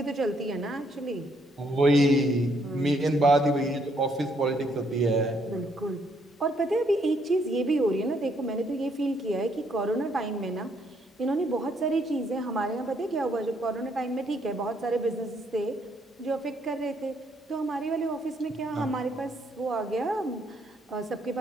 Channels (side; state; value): both; normal; correlation 0.71